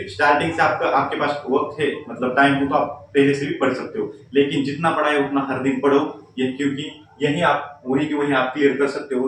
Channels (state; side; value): identical; both; correlation 1.00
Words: स्टार्टिंग से आपके पास वक्त है मतलब टाइम हो तो आप पहले से भी पढ़ सकते हो, लेकिन जितना पढ़ा है उतना हर दिन पढ़ो। ये क्योंकि यही आप वही की वही आप क्लियर कर सकते